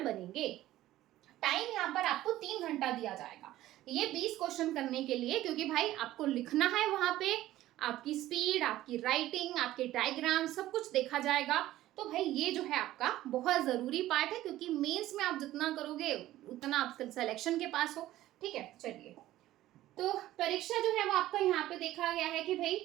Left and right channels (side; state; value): left; quieter; 14.9 dB